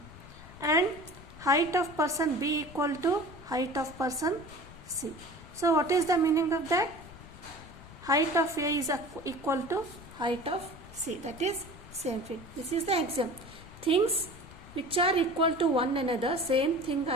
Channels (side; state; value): left; noise; rumble, 18 dB below the sound